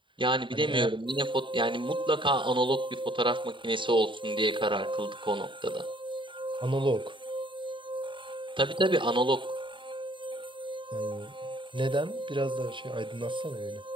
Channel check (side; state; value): left; late; 0.24 ms